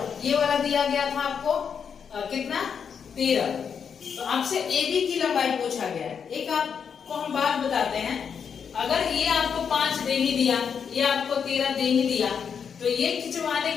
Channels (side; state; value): right; quieter; 6.9 dB